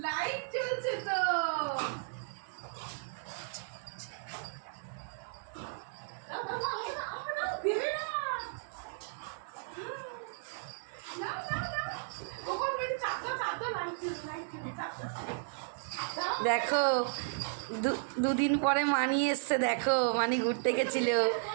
Light জ্বলছে তো। দেখো দুদিন পরে মানি এসছে, দেখো মানি ঘুরতে গেছিল,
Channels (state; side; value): silent; left; 55 dB below the other